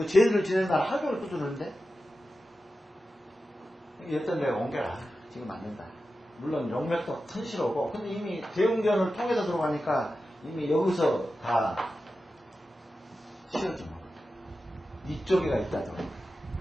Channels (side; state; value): both; normal; correlation 0.92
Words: 제일을 지내는 날 하루 종일 두드리는데 여튼 내가 옮겨라. 지금 안 된다. 물론 용맥도 튼실하고 근데 이미 대웅전을 통해서 들어가니까 이미 여기서 다 치워져. 이쪽에가 있다더라고요.